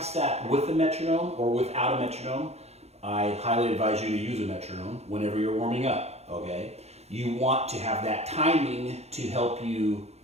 that with a metronome or without a metronome. I highly advise you to use a metronome whenever you're warming up, okay? You want to have that timing to help you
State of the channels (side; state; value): left; late; 0.31 ms